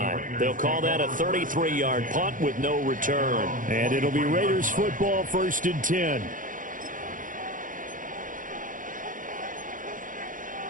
They'll call that a 33-yard punt with no return. And it'll be Raiders football, 1st and 10.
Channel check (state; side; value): late; left; 0.39 ms